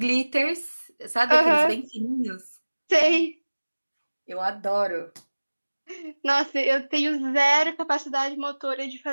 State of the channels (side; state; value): both; inverted; correlation -1.00